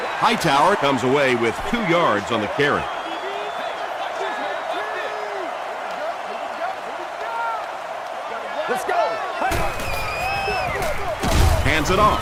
Hightower comes away with 2 yards on the carry. Let's go. Hands it off.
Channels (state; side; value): identical; both; correlation 1.00